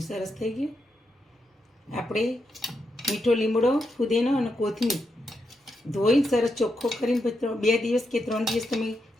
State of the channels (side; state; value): both; normal; correlation 0.84